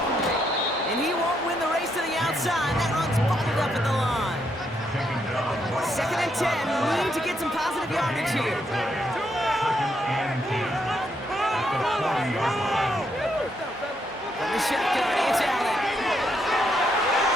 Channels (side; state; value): both; normal; correlation 0.77